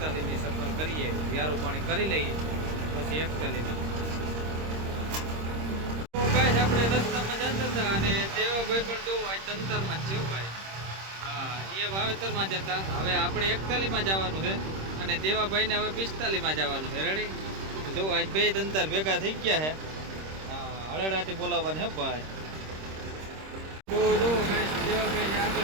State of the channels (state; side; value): late; left; 26 ms